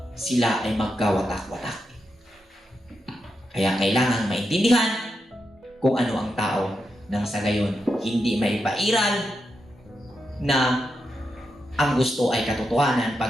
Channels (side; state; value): both; normal; correlation 0.86